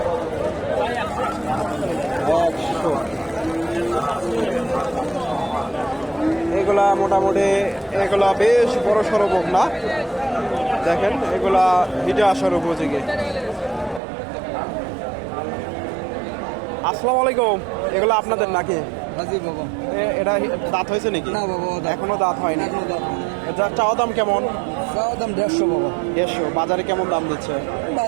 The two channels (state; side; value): drops out; left; at 14.0 s